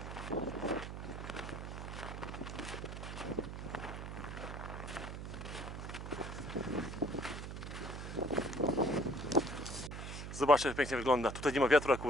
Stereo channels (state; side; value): noise; right; hum, 7 dB below the sound